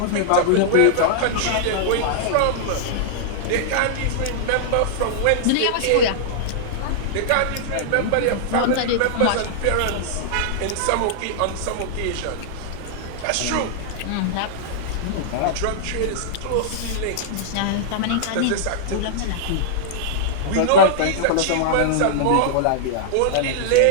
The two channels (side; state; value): both; different; correlation -0.01